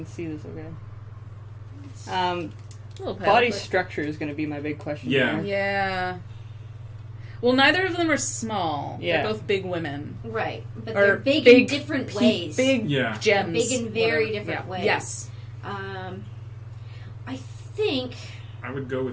see this, okay? A little pale, Body but- structure is going to be my big question. Yeah. here. Yeah. Well, neither of them are small. Yeah. They're both big women. Right. But Or they're big in different pe- ways. Big Yeah. gems. Big in very whatever. different Yeah. ways. Yes. I think... I would go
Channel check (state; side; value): identical; both; correlation 1.00